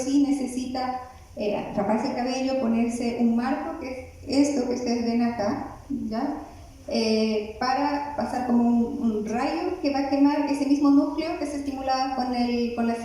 necesita raparse el cabello, ponerse un marco, que es esto que ustedes ven acá, ¿ya? Para pasar como un rayo que va a quemar ese mismo núcleo que se estimulaba con la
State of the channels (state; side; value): identical; both; correlation 1.00